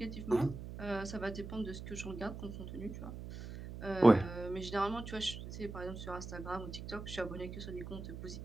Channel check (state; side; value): noise; right; hum, 9 dB below the sound